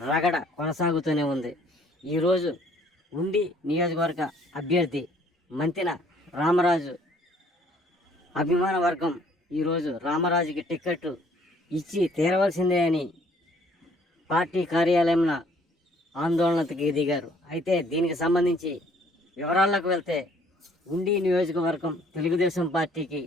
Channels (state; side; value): normal; both; correlation 0.60